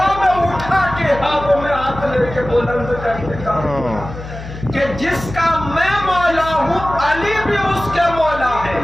میں اٹھا کے ہاتھوں میں ہاتھ لے کے بلند کر کے کہا کہ جس کا میں مولا ہوں علی بھی اس کے مولا ہے.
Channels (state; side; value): noise; left; hum, 12 dB below the sound